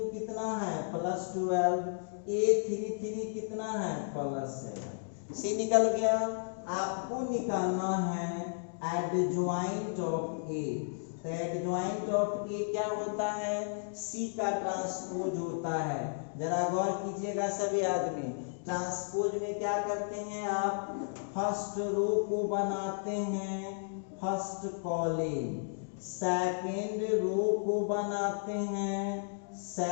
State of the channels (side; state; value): right; silent; digital silence